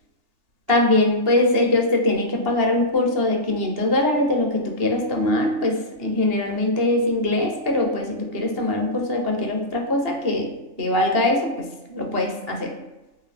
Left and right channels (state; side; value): late; left; 3.4 ms